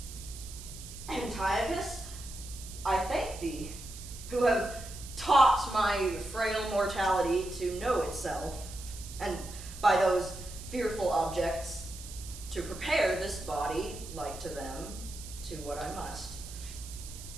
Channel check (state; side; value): noise; right; hiss, 13 dB below the sound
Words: Antiochus, I thank thee, who have taught my frail mortality to know itself, and by those fearful objects, to prepare this body, like to them, to what I must.